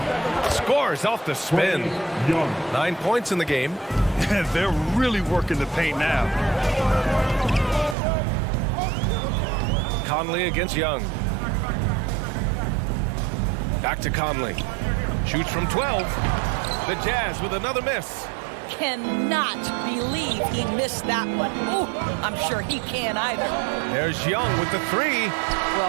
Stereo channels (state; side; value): drops out; left; at 8.0 s